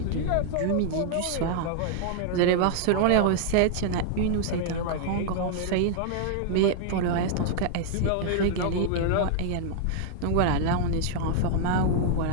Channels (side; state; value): both; different; correlation 0.00